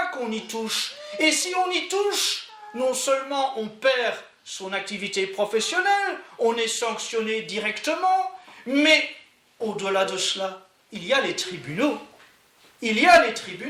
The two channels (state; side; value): identical; both; correlation 1.00